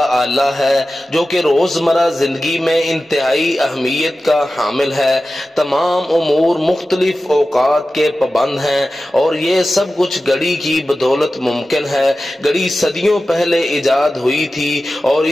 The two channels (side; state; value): both; normal; correlation 0.94